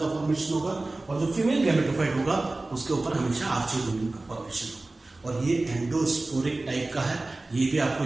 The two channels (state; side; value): quieter; left; 3.0 dB